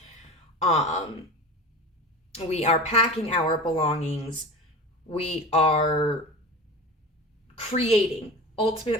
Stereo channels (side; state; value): both; normal; correlation 0.32